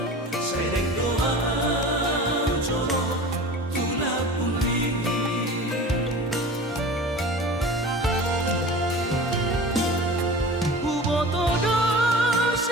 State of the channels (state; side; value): normal; both; correlation 0.37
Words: sereng doa coro tulak pungli Ubotodo